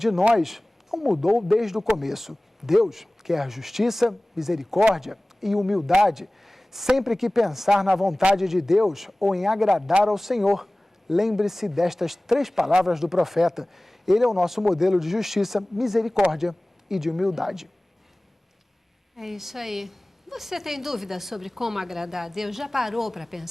nós não mudou desde o começo. Deus quer justiça, misericórdia e humildade. Sempre que pensar na vontade de Deus ou em agradar ao Senhor, lembre-se destas 3 palavras do profeta. Ele é o nosso modelo de justiça, misericórdia e de humildade. É isso aí. Você tem dúvida sobre como agradar a Deus? Já parou para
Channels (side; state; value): both; normal; correlation 0.98